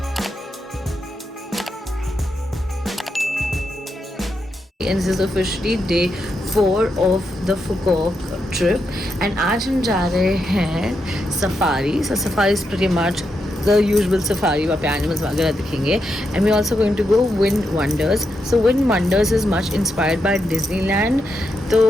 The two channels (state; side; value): normal; both; correlation 0.83